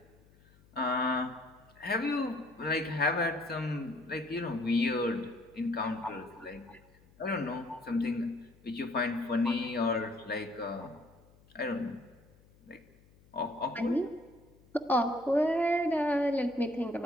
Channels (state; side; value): noise; left; hum, 28 dB below the sound